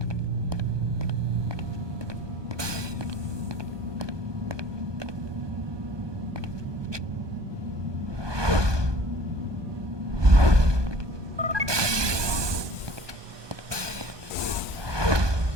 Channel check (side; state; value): left; late; 1.2 ms